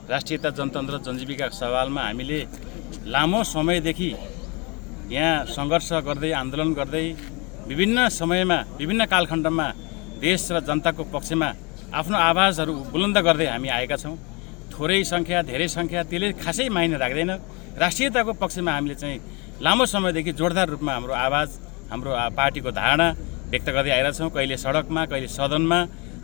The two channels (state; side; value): quieter; right; 28.8 dB